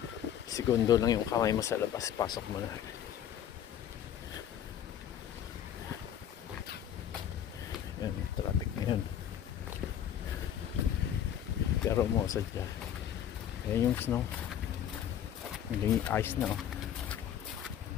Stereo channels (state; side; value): quieter; right; 9.9 dB